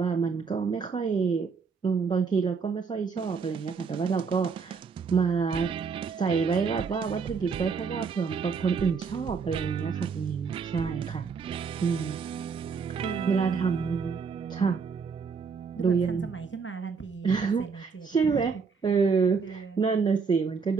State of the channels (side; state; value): left; quieter; 5.4 dB